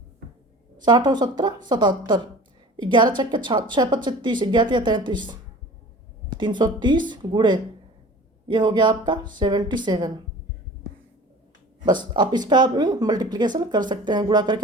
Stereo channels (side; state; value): both; normal; correlation 0.42